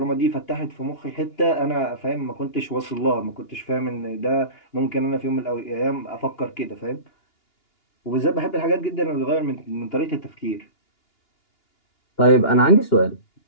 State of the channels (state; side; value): late; right; 2.8 ms